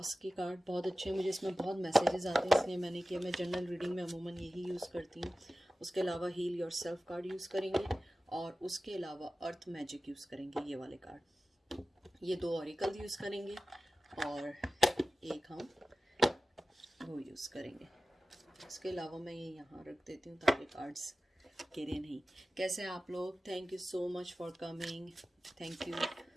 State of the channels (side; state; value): both; normal; correlation 0.95